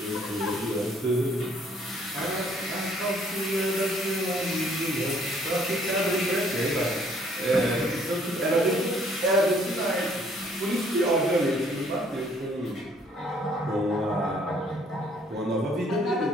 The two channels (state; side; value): normal; both; correlation 0.63